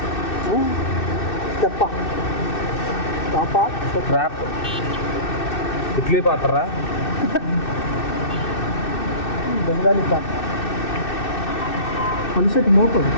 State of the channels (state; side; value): late; right; 2.6 ms